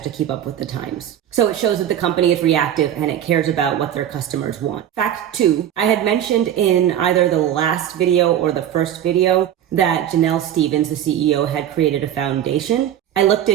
to keep up with the times. So it shows that the company is reactive and it cares about what their customers want. Fact 2, I had mentioned in either the last video or the first video that Janell, the CEO, had created a foundation. I looked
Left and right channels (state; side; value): quieter; left; 10.7 dB